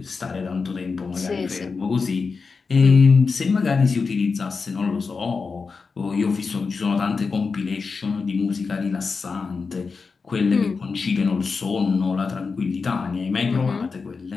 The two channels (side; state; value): right; quieter; 4.8 dB